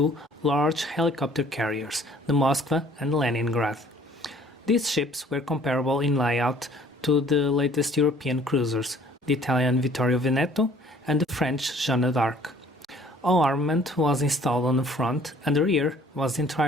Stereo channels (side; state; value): both; normal; correlation 0.56